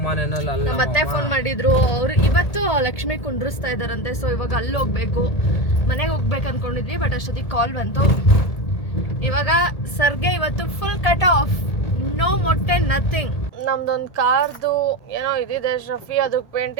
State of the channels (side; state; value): right; late; 1.8 ms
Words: ಮನೆಯಲ್ಲಿ ಅಲ್ಲ, ನಮ್ಮ ಅತ್ತೆ ಫೋನ್ ಮಾಡಿದ್ರು. ಅವರು ಇವತ್ತು ಲಕ್ಷ್ಮಿ ಕುಂಡ್ರಿಸ್ತಾ ಇದ್ದಾರಂತೆ, ಸೊ ಇವಾಗ ಅಲ್ಲಿ ಹೋಗ್ಬೇಕು. ಮನೆಗೆ ಹೋಗ್ಬೇಕು ಅಂದ್ಕೊಂಡಿದ್ವಿ, ಬಟ್ ಅಷ್ಟೊತ್ತಿಗೆ ಕಾಲ್ ಬಂತು. ಇವಾಗ ಸರ್ಗೆ ಇವತ್ತು ಫುಲ್ ಕಟ್ ಆಫ್, ನೋ ಮೊಟ್ಟೆ, ನಥಿಂಗ್. ನಮ್ದೊಂದು ಕಾರ್ದು ಏನೋ ಇದಿದೆ, ಶಫಿ ಅದಕ್ಕೆ